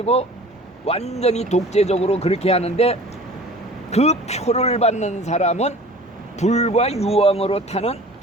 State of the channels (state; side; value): normal; both; correlation 0.44